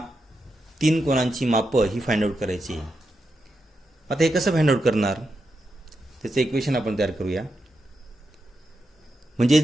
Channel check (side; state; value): both; normal; correlation 0.86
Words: तीन कोनांची मापं ही फाइंड आउट करायची आहे. आता हे कसं फाइंड आउट करणार त्याचं इक्वेशन आपण तयार करूया. म्हणजे